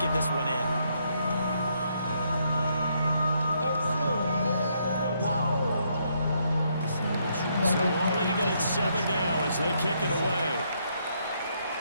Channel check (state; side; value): inverted; both; correlation -0.74